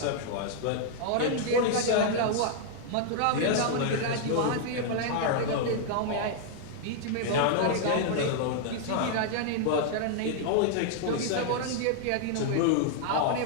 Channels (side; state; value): both; different; correlation -0.01